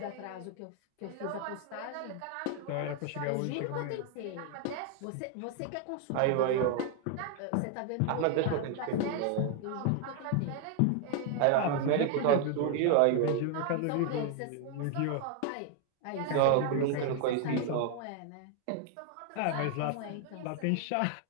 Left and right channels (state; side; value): different; both; correlation 0.00